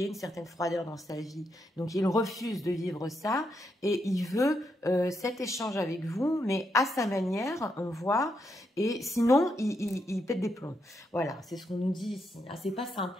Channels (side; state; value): both; normal; correlation 0.80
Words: ait une certaine froideur dans sa vie. Donc il refuse de vivre ça, et il veut cet échange avec vous, mais à sa manière, on voit, et sinon, il pète des plombs. Voilà, c'est ce qu'on nous dit ici. Ah, c'est pas